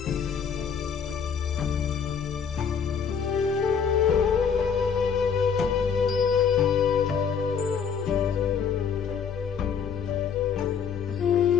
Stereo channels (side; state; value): right; quieter; 6.7 dB